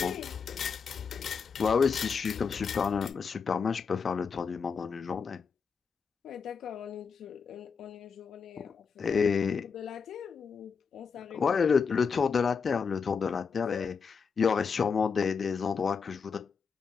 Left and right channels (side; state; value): right; quieter; 5.7 dB